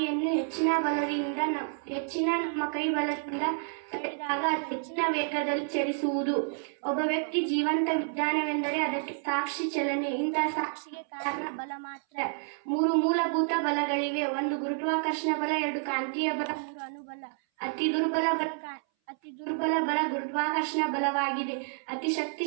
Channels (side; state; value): left; silent; 58 dB below the other